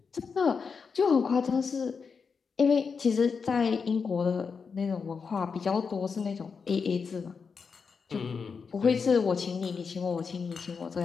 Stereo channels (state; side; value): quieter; right; 5.5 dB